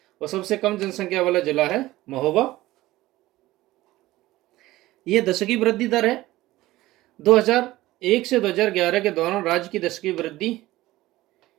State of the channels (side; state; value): left; quieter; 17.2 dB